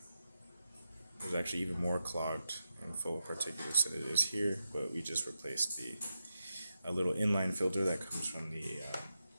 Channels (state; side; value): inverted; both; correlation -0.89